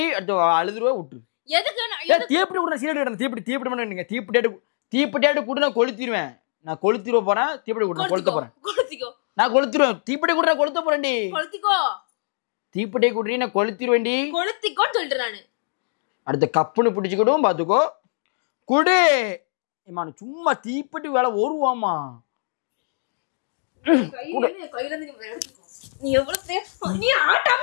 அடுத்து அழுதுருவா விட்டு. எதுக்கு தீப்பிட்டு விடுற சீரட் தீப்பிட்டு பண்ணீங்க. தீப்பிட்டு கூட நான் கொளுத்திடுவேன். நான் கொளுத்திடுவ போறேன். தீப்பிட்டு கூட கொளுத்த போறேன். நான் கொளுத்திடுவேன். தீப்பிட்டு கூட கொளுத்த போறேன்டி. கொளுத்திக்கோ. தீப்பிட்டே குடுறீ நான் கொளுத்திடுவேன்டி. கொளுத்திக்கோன்னு சொல்லிட்டு நானு. அடுத்த கப்புன்னு பிடிச்சுக்கிடும் பாத்துக்கோ. குடு. சும்மா தீப்பிட்டு வேலை வருவாமா. நீ எவ்வளவு நீ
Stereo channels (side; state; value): right; silent; digital silence